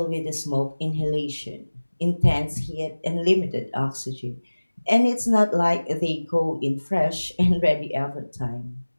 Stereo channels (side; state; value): both; inverted; correlation -1.00